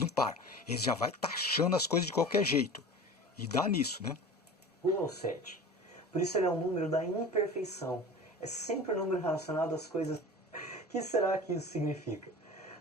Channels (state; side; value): normal; both; correlation 0.37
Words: param. Eles já vão taxando as coisas de qualquer jeito. E dá nisso, né? 1 ao 7. Por isso ele é um número da imperfeição. É sempre um número relacionado às coisas... O que será que isso significa?